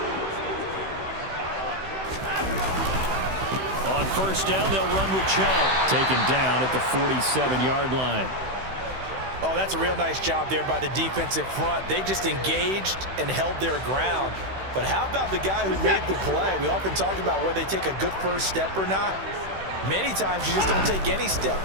On first down, they'll run with Chubb. Taken down at the 47-yard line. Oh, that's a real nice job there by the defensive front. They just engaged and held their ground. But how about the guy who made the play? We often talk about whether they take a good first step or not. Many times you just don't take any step.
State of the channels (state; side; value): late; left; 16 ms